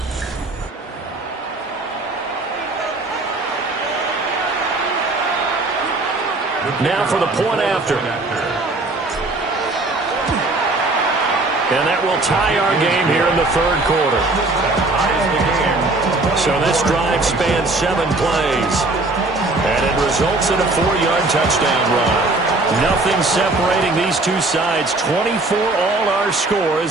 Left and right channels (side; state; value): left; quieter; 3.1 dB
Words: Now for the point after. And that will tie our game here in the 3rd quarter. So this drive spans 7 plays. And it results in a 4-yard touchdown run. Nothing separating these two sides. 24 all our score